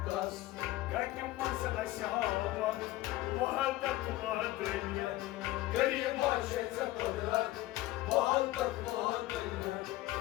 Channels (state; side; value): quieter; right; 16.9 dB